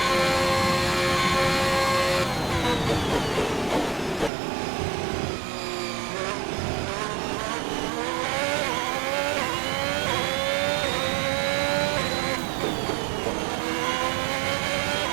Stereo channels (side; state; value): left; drops out; at 4.3 s